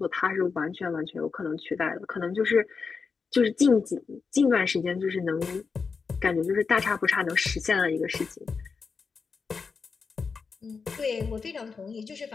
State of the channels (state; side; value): quieter; right; 5.2 dB